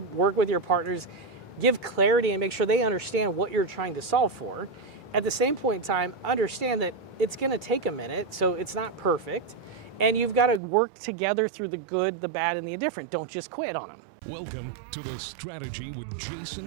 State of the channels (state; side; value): drops out; left; at 10.6 s